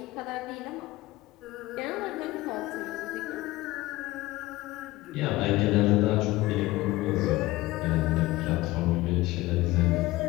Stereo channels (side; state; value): right; quieter; 18.8 dB